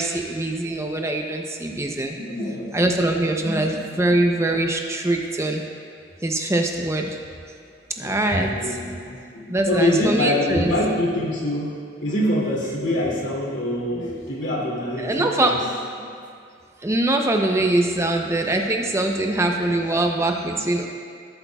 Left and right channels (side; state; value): both; normal; correlation 0.55